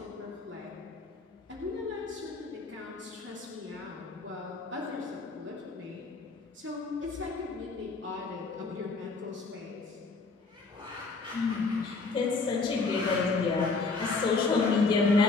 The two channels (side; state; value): right; quieter; 3.9 dB